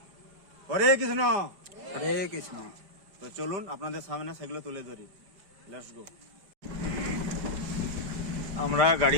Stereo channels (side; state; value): left; late; 5.0 ms